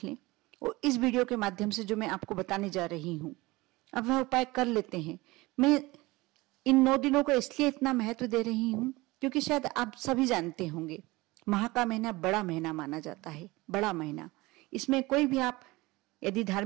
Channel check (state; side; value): quieter; left; 21.3 dB